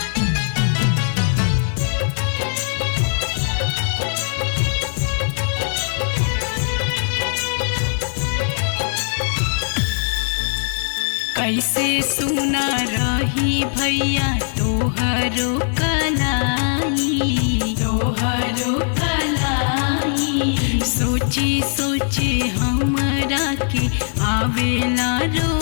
कैसे सुना रही भैया तोहरो कलाई, तोहरो कलाई। सोची सोचे हमरा के आवेला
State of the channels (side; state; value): right; silent; digital silence